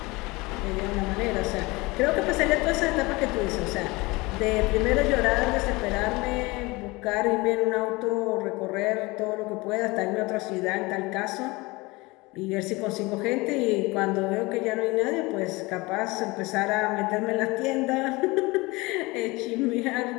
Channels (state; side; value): quieter; right; 23.4 dB